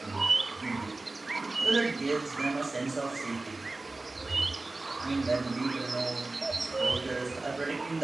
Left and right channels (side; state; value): left; quieter; 3.2 dB